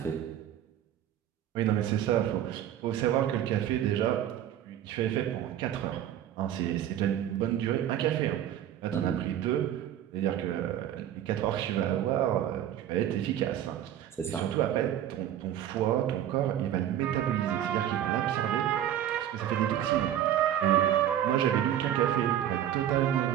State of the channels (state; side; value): quieter; left; 11.1 dB